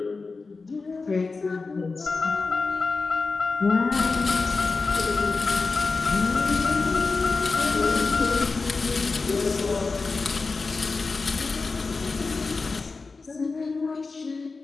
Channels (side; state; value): right; quieter; 4.1 dB